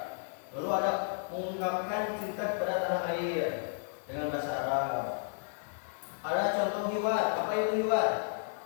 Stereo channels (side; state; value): right; silent; digital silence